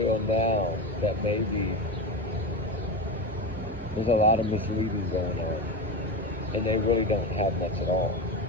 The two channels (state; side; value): normal; both; correlation 0.21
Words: now that maybe there's a lot of misleading going on, and they really don't have much at all,